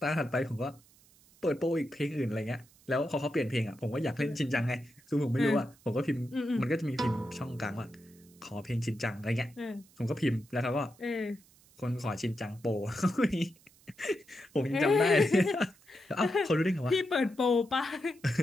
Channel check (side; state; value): right; noise; hiss, 28 dB below the sound